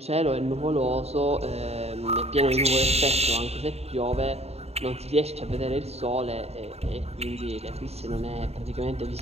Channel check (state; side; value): late; left; 0.30 ms